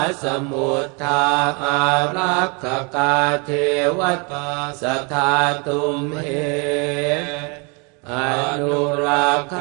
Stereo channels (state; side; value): quieter; left; 32.0 dB